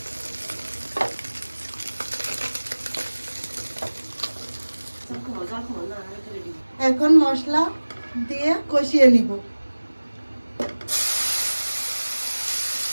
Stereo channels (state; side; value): inverted; both; correlation -1.00